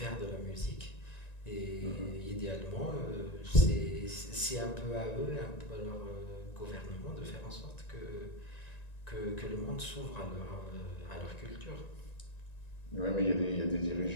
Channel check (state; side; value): late; right; 1.9 ms